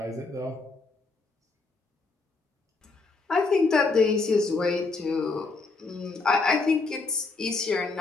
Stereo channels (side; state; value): right; quieter; 3.8 dB